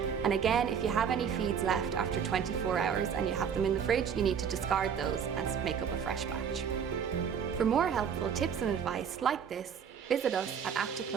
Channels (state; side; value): quieter; left; 7.4 dB